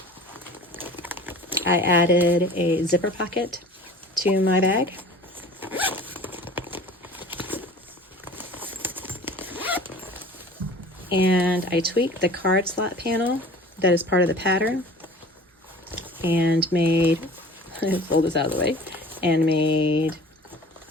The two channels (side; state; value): both; normal; correlation 0.43